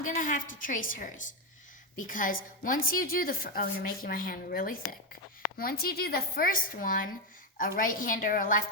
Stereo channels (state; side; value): normal; both; correlation 0.06